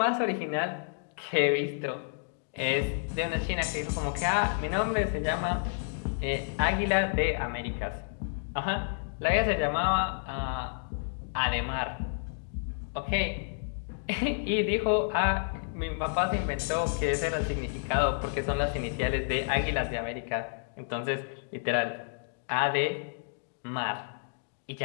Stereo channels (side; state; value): right; silent; digital silence